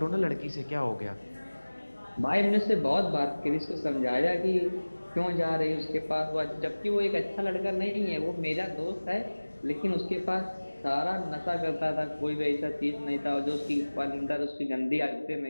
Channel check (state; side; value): inverted; both; correlation -1.00